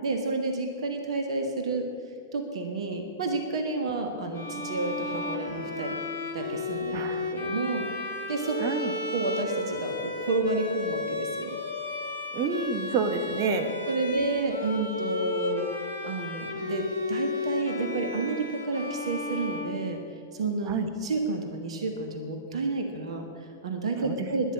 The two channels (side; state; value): both; inverted; correlation -0.37